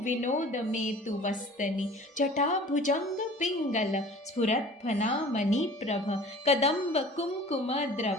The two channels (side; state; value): both; normal; correlation 0.45